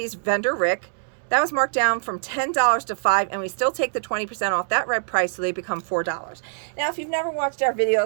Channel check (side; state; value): left; silent; digital silence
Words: vendor Rick. That was marked down from $10 to $5, and we still take the 20% off that red price, so they become $4. Now, if you've never watched our